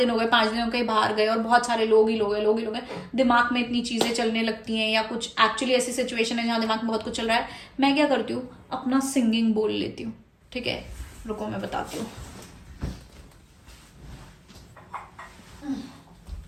हो गए, 5 दिन हो गए, बाहर गए और बहुत सारे लोग ही लोग हैं, दिमाग में इतनी चीजें चलने लगती हैं, या कुछ एक्चुअली ऐसी सिचुएशन है जहाँ दिमाग में बहुत कुछ चल रहा है, मैं क्या करती हूँ, अपना सिंगिंग बोल लेती हूँ. ठीक है, रुको मैं बताती हूँ.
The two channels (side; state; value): both; identical; correlation 1.00